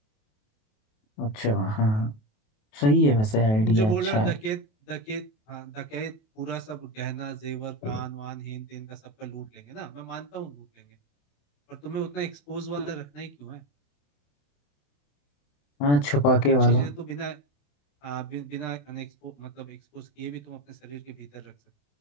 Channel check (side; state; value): right; late; 28 ms